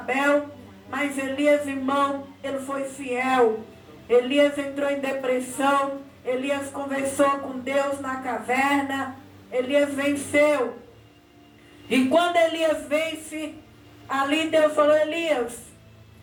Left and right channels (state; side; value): identical; both; correlation 1.00